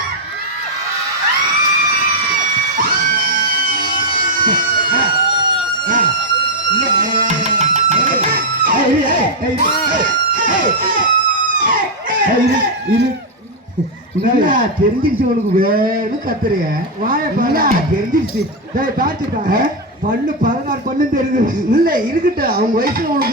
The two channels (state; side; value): normal; both; correlation 0.02